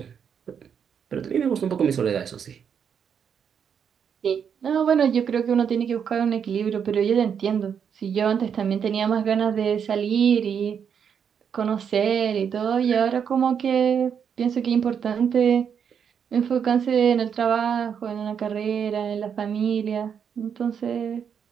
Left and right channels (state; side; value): quieter; left; 7.5 dB